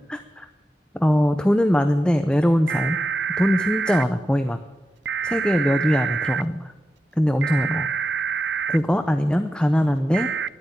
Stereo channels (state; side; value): normal; both; correlation 0.90